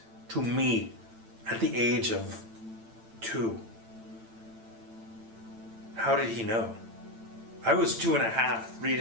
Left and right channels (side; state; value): left; late; 8.9 ms